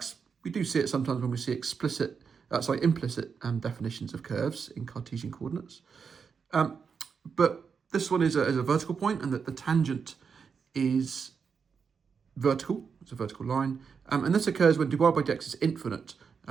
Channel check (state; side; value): quieter; left; 6.0 dB